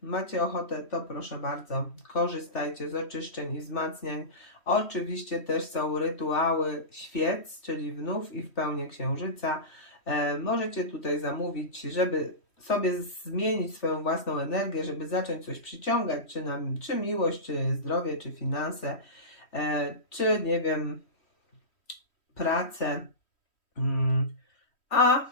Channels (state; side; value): late; right; 3.1 ms